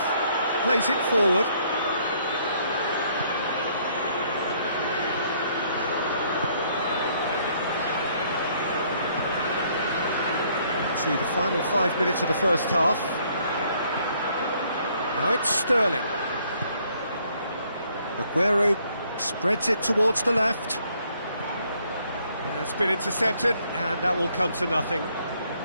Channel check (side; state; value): both; inverted; correlation -0.66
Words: plays it forward. To the final 5 minutes of the first half. Now it's Sterling. Aguero spreads it towards the left. It's been intercepted, and that will come to nothing.